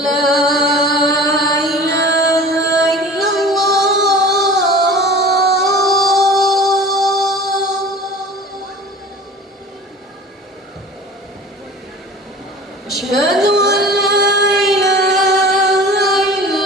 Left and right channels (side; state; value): both; normal; correlation 0.41